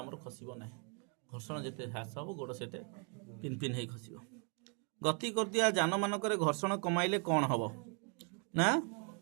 खसिबो नाही घर्षण जेते ह्रास हबो गोड़ सेते पिन पिन हे खसिबो गति करतिया जान मानकरे घर्षण कमाइले कोन हबो ना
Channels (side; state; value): left; quieter; 38.4 dB